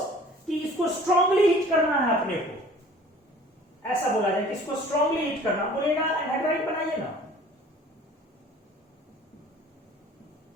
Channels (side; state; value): both; normal; correlation 0.49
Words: कि इसको स्ट्रांगली हिट करना है अपने को, ऐसा बोला जाए कि इसको स्ट्रांगली हिट करना, बोलेगा एनहाइड्राइड बनाइए ना।